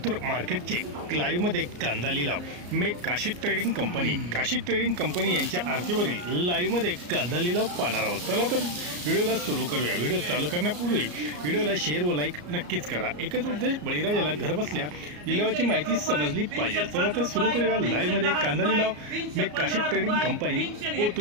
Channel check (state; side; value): late; left; 34 ms